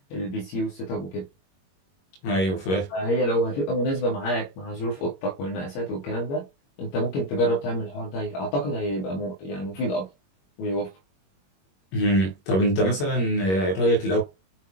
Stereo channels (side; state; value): right; late; 21 ms